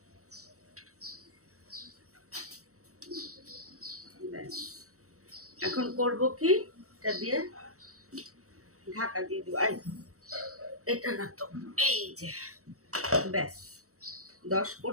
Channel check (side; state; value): left; late; 0.65 ms